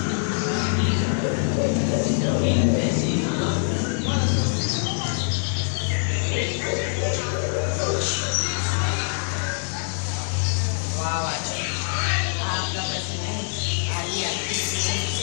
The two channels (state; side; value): silent; right; digital silence